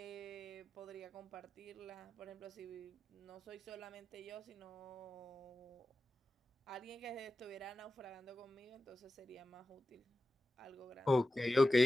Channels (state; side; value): normal; both; correlation 0.94